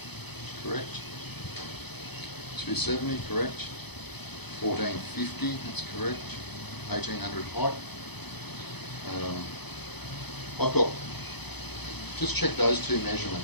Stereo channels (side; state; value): right; late; 0.98 ms